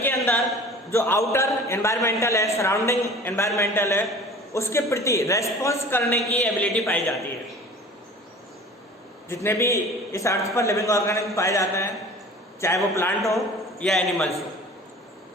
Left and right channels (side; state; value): both; normal; correlation 0.43